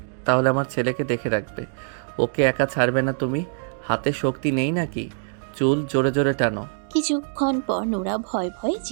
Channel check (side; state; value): left; silent; digital silence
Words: তাহলে আমার ছেলেকে দেখে রাখবে। ওকে একা ছাড়বে না তুমি। হাতে শক্তি নেই নাকি? চুল জোরে জোরে টানো। কিছুক্ষণ পর নোরা ভয় ভয়ে